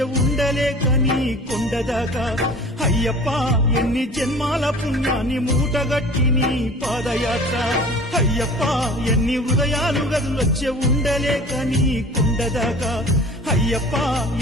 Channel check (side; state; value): both; normal; correlation 0.43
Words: ఉండలేక నీ కొండదాకా అయ్యప్ప ఎన్ని జన్మాల పుణ్యాన్ని మూటగట్టి నీ పాదయాత్ర అయ్యప్ప ఎన్ని హృదయాలు గదులొచ్చే ఉండలేక నీ కొండదాకా అయ్యప్ప